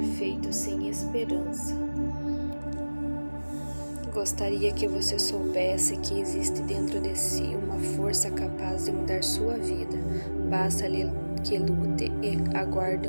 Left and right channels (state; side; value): inverted; both; correlation -1.00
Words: feito sem esperança. Gostaria que você soubesse que existe dentro de si uma força capaz de mudar sua vida. Basta que lute e aguarde